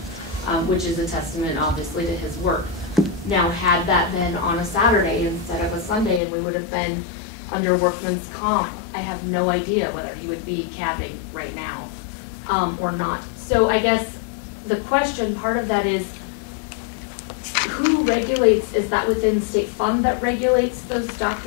which is a testament, obviously, to his work. Now, had that been on a Saturday instead of a Sunday, and we would have been under workman's comp, I have no idea whether he would be cabbing right now or not. So I guess the question, part of that is, who regulates? Is that within state fund that regulates those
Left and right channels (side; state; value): right; drops out; at 6.2 s